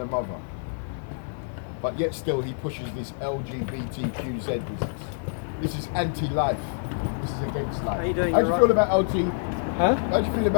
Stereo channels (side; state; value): right; silent; digital silence